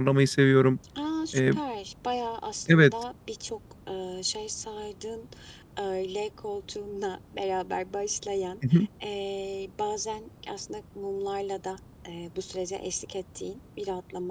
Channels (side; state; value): both; identical; correlation 1.00